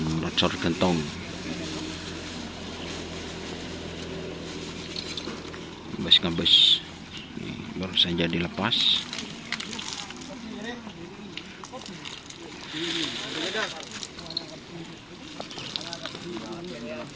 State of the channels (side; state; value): both; identical; correlation 1.00